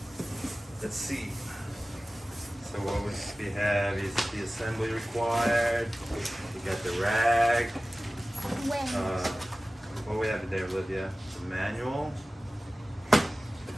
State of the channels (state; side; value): normal; both; correlation 0.96